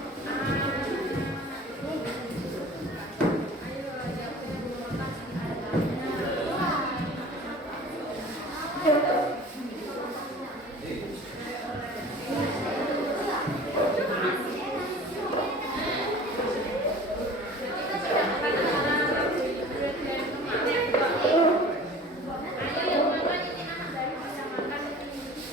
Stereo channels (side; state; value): both; normal; correlation 0.43